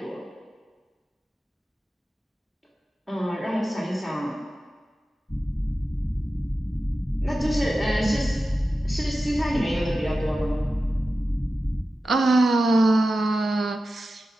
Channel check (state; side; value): normal; both; correlation 0.93